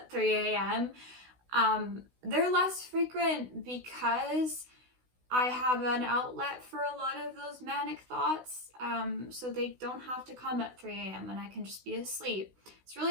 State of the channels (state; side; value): late; left; 16 ms